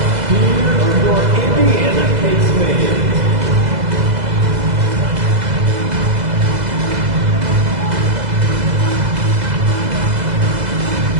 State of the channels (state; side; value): late; left; 2.0 ms